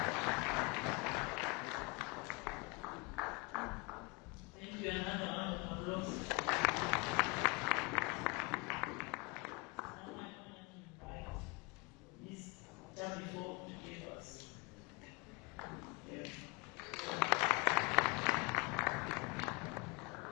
Thank you. Another round of applause.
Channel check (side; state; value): right; quieter; 28.6 dB